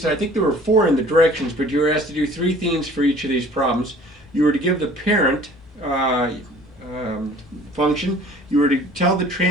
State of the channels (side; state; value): both; normal; correlation 0.50